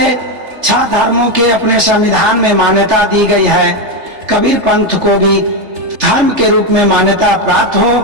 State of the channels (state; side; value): late; left; 3.3 ms